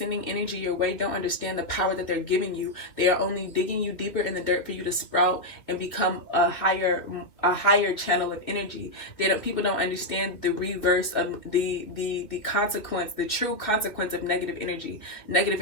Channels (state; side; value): late; right; 2.5 ms